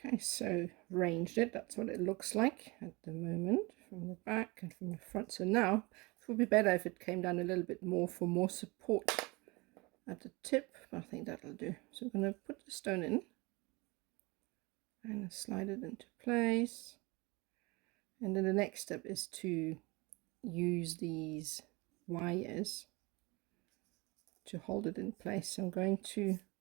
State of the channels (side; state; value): left; quieter; 25.3 dB